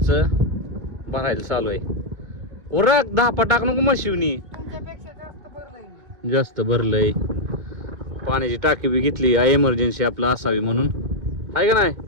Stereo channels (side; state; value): left; late; 2.2 ms